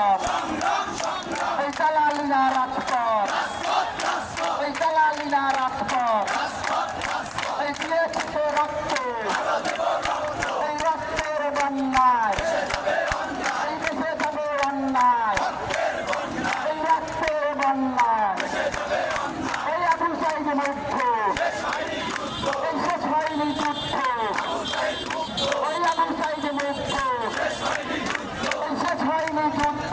এই দালালিনা রাজপথ, এই দালালিনা রাজপথ, এই দিয়েছে রক্ত, এই রক্তের বন্যায়, এই দেশে যাবে অন্যায়, এই রক্তের বন্যায়, এই আবু সাইদ মুগ্ধ, এই শেষ হয়নি যুদ্ধ, ওই আবু সাইদ মুগ্ধ, এই শেষ হয়নি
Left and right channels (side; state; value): both; identical; correlation 1.00